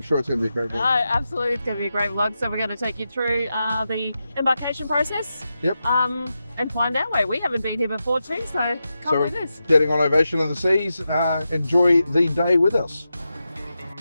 sure it's going to be a great vlog. Absolutely, it's going to be a great vlog. So we're going to take you through the embarkation process. Yep. And find our way. We haven't been here before too, so come with us. Getting on Ovation of the Seas. Enjoy the day with us.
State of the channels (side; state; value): both; inverted; correlation -0.89